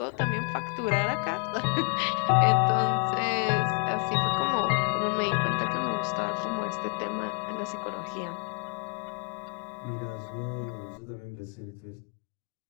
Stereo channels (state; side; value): quieter; right; 39.8 dB